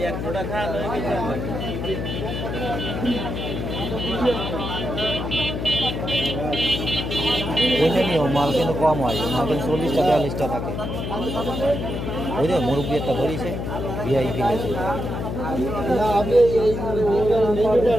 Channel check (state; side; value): noise; left; hum, 4 dB below the sound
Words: ওইটা নিও, মাল কিন্তু কম হয়, মাল কিন্তু 40টা 42টা থাকে। ওই যে মুরব্বী একটা ধরিছে ভিআইপি লেছে।